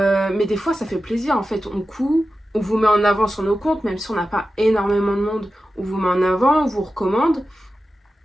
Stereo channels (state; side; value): normal; both; correlation 0.93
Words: des fois, ça fait plaisir. En fait, on coud, on vous met en avant sur nos comptes, même si on n'a pas énormément de monde, on vous met en avant, on vous recommande.